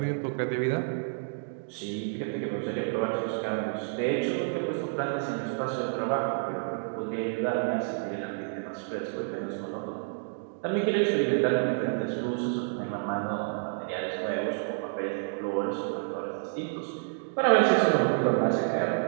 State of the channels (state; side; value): silent; left; digital silence